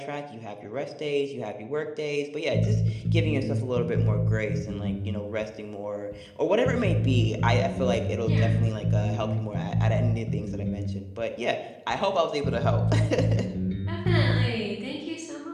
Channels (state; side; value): identical; both; correlation 1.00